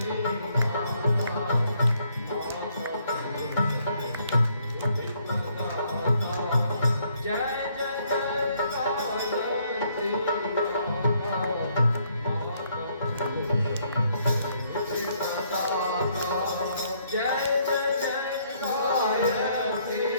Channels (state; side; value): inverted; both; correlation -0.69